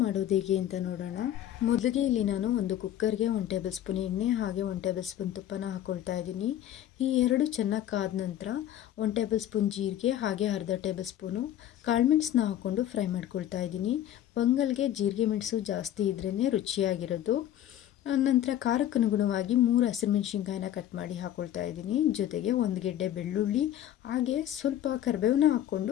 ಹೇಗೆ ಅಂತ ನೋಡೋಣ. ಮೊದಲಿಗೆ ಇಲ್ಲಿ ನಾನು ಒಂದು ಕುಕ್ಕರ್ಗೆ 1 ಟೇಬಲ್ ಸ್ಪೂನ್ ಎಣ್ಣೆ ಹಾಗೆ 1 ಟೇಬಲ್ ಸ್ಪೂನ್ ತುಪ್ಪನ ಹಾಕ್ಕೊಳ್ತಾ ಇದ್ದೀನಿ. ಈ ಎರಡು ಚೆನ್ನಾಗಿ ಕಾದ ನಂತರ 1 ಟೇಬಲ್ ಸ್ಪೂನ್ ಜೀರಿಗೆ ಹಾಗೆ ಅರ್ಧ ಟೇಬಲ್ ಸ್ಪೂನು ಕಾಳುಮೆಣಸನ್ನ ಹಾಕ್ಕೊಂಡು ಫ್ರೈ ಮಾಡ್ಕೊಳ್ತಾ ಇದ್ದೀನಿ. ಪೊಂಗಲ್ಗೆ ಜೀರಿಗೆ ಮೆಣಸು ಜಾಸ್ತಿ ಇದ್ರೇ ರುಚಿಯಾಗಿರೋದು. ನಂತರ ಖಾರಕ್ಕೆ ಅನುಗುಣವಾಗಿ 3 ಹಸಿರುಮೆಣಸಿನ್ಕಾಯಿನ ಕಟ್ ಮಾಡಿ ಹಾಕ್ಕೊಳ್ತಾ ಇದ್ದೀನಿ. ಜೊತೆಗೆ 1 ಗೆಡ್ಡೆ ಬೆಳ್ಳುಳ್ಳಿ ಹಾಗೆ ಸ್ವಲ್ಪ ಕರಿಬೇವನ್ನ ಹಾಕ್ಕೊಂಡು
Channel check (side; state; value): right; quieter; 11.8 dB